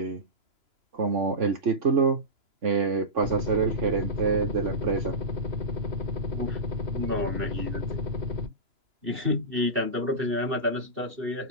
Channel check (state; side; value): late; left; 2.9 ms